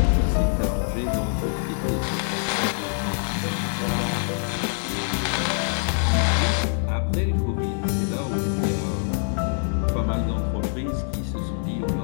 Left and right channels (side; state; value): right; silent; 62 dB below the other